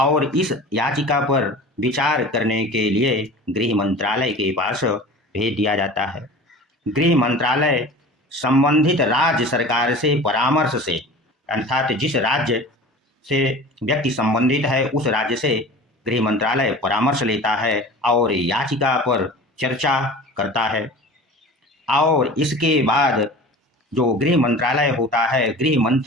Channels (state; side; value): normal; both; correlation 0.38